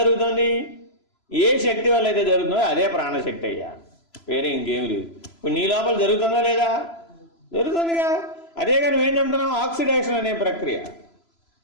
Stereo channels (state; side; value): late; right; 3.0 ms